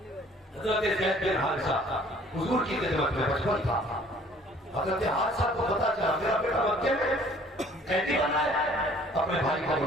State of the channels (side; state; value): both; normal; correlation 0.55